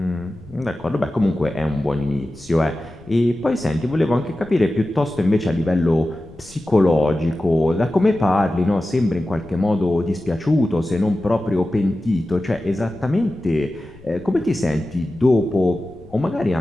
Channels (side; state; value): left; noise; rumble, 22 dB below the sound